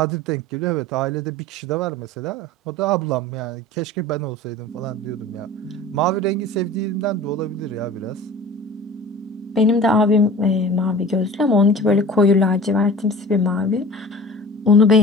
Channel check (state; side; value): normal; both; correlation 0.40